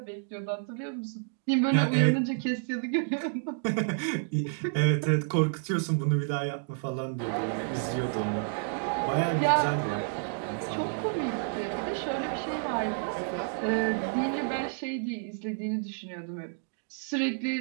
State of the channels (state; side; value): silent; left; digital silence